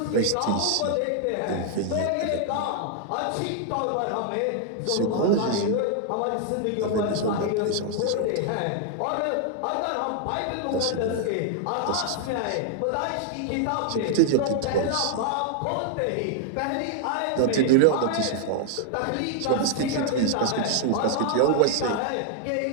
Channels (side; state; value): both; different; correlation 0.00